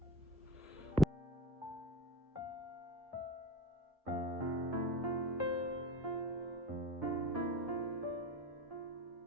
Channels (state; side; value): normal; both; correlation 0.29